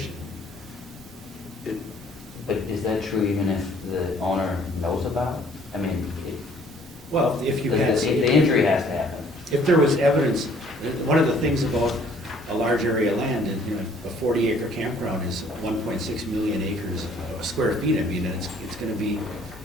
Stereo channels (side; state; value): both; normal; correlation 0.59